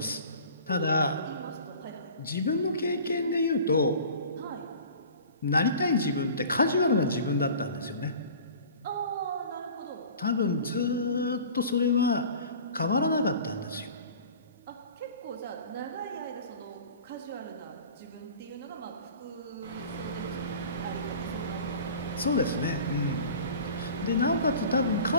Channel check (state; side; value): inverted; both; correlation -0.43